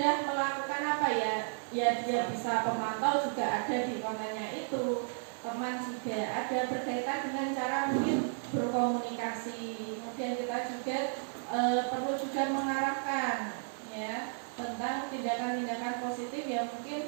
melakukan apa ya? Ya dia bisa pemantau juga ada di kontennya itu. Teman juga ada berkaitan dengan cara mungkin berkomunikasi. Kemudian kita juga perlu juga mengarahkan ya tentang tindakan-tindakan positif yang mungkin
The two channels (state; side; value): silent; left; 56 dB below the other